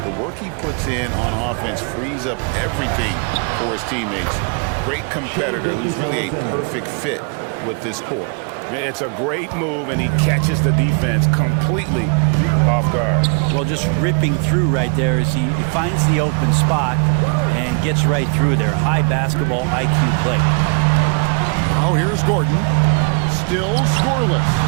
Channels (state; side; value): quieter; left; 38.4 dB